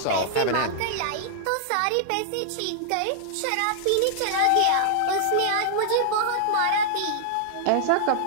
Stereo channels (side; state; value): both; different; correlation -0.01